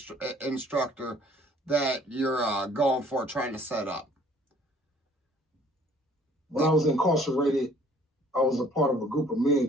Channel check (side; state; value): both; normal; correlation 0.57